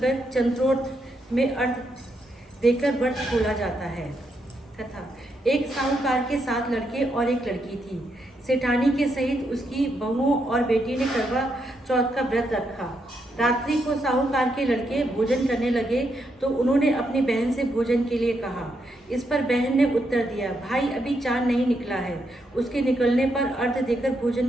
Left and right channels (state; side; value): normal; both; correlation 0.80